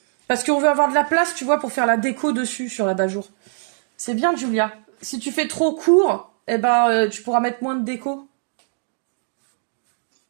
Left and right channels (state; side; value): silent; left; 64 dB below the other